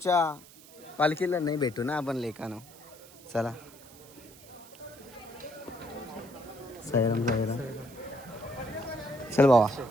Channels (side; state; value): right; noise; hiss, 21 dB below the sound